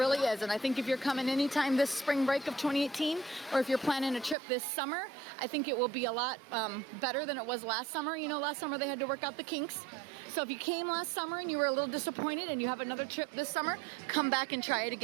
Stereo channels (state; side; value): drops out; left; at 4.4 s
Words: is, and I think if you're coming anytime this spring break of 2018, or if you're planning a trip this summer, I think it will be a lot better than it was last summer. You know, last summer they had to work out the kinks. So if you came last summer and you were a little disappointed and you have another trip this summer, come back and try it